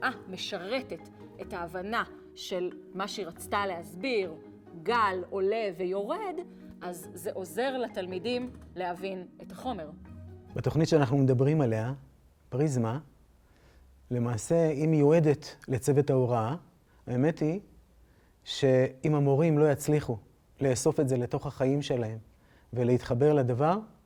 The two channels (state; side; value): identical; both; correlation 1.00